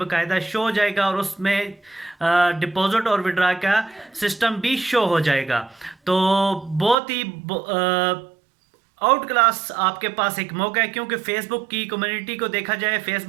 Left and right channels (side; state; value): left; drops out; at 7.0 s